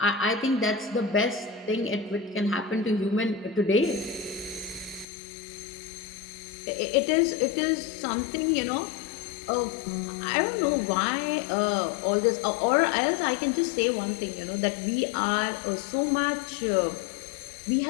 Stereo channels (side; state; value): right; drops out; at 5.1 s